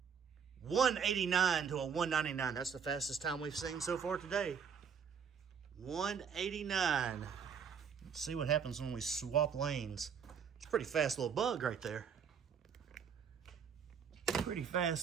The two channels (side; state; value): left; quieter; 6.9 dB